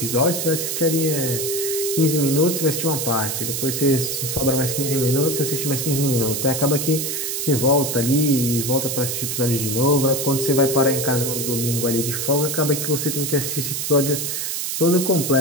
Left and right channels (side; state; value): right; noise; hiss, 2 dB below the sound